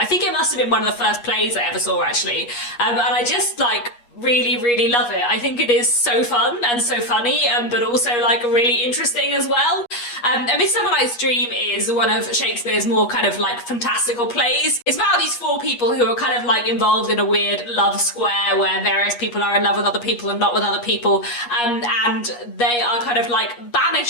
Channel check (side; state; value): right; late; 8.4 ms